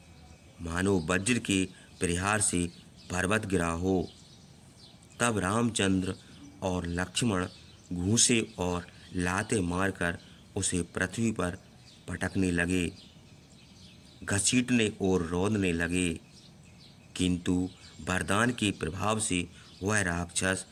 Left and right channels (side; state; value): both; identical; correlation 1.00